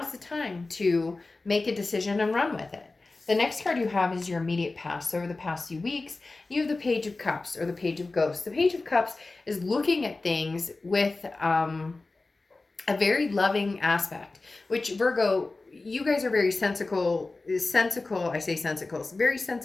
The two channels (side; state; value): right; quieter; 3.4 dB